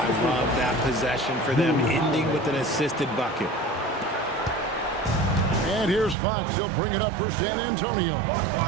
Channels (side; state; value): left; drops out; at 6.2 s